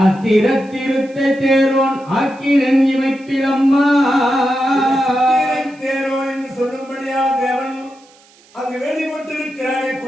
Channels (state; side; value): noise; right; hiss, 29 dB below the sound